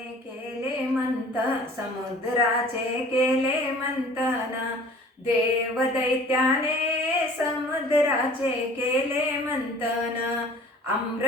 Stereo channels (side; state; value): both; normal; correlation 0.47